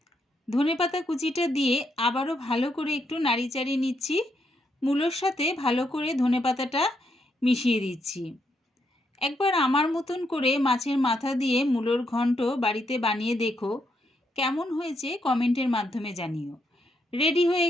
ধনেপাতা কুচিটা দিয়ে আবারও ভালো করে একটু নাড়িচাড়ি নিচ্ছি। মূলোর সাথে ভালো করে ধনেপাতাটা মিশিয়ে দিচ্ছি। একবার আমার মতন করে মাছের মাথা দিয়ে মূলোর ঘন্ট বাড়িতে বানিয়ে দেখো, কেমন হয়েছে কমেন্টের মাধ্যমে জানিও। রেডি হয়ে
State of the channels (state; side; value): normal; both; correlation 0.78